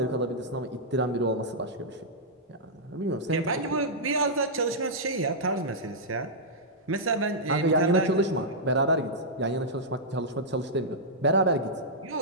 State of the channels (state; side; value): normal; both; correlation -0.10